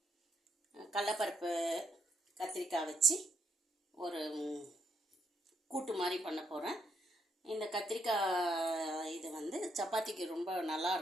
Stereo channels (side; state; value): both; normal; correlation 0.76